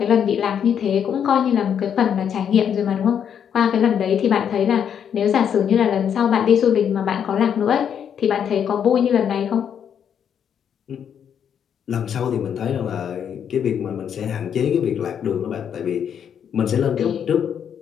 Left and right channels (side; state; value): right; quieter; 8.3 dB